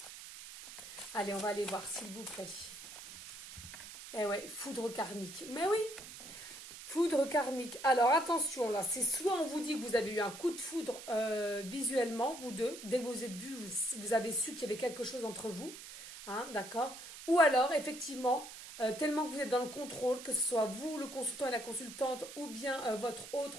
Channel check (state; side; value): noise; right; hiss, 13 dB below the sound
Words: Allez, on va aller voir, s'il vous plaît. Eh ouais, foudre karmique. Mais oui, foudre karmique. Alors, attention, là, c'est soit on vous dit que vous avez eu un coup de foudre visuellement, vous deux. Dès que vous êtes vus, vous avez su qu'il y avait quelque chose entre vous. Hein, d'accord. Ou alors, effectivement, tellement que vous êtes dans le contrôle, que ce soit vous, le consultant et la consultante, ou bien votre